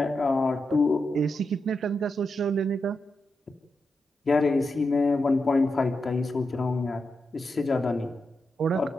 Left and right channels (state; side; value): normal; both; correlation 0.87